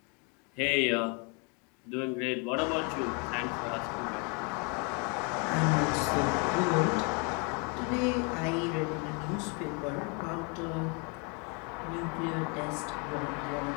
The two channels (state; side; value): quieter; right; 34.2 dB